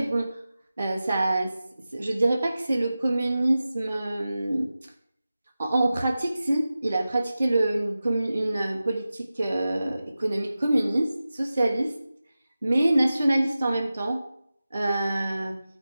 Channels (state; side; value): inverted; both; correlation -0.95